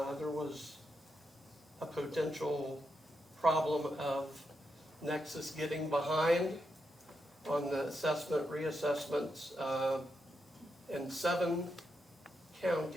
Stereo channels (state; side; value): normal; both; correlation 0.84